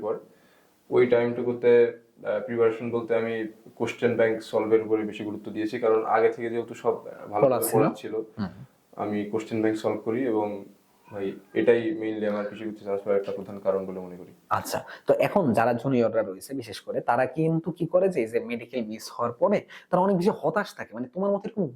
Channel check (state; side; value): identical; both; correlation 1.00